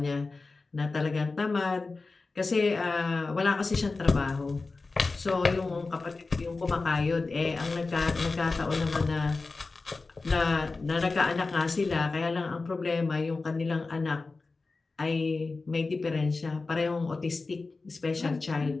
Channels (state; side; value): quieter; right; 3.8 dB